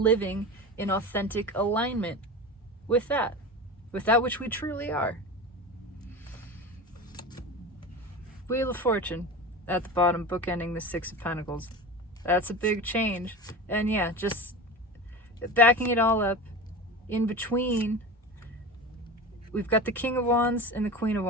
in authentic alignment with that which we truly are. Wheel of Fortune at the bottom, bookending the Six of Pentacles. That's a big change. And yeah, just backing it all up, in between, we've got the King of Wands and the Queen of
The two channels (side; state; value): both; normal; correlation 0.29